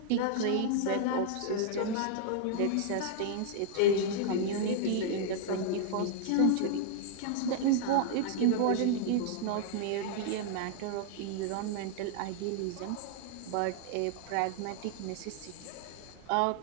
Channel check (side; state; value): both; different; correlation -0.01